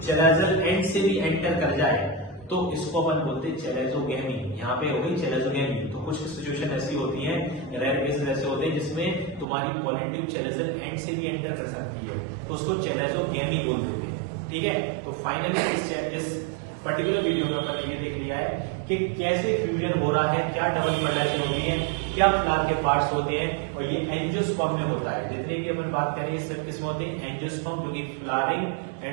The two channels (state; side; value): drops out; left; at 9.5 s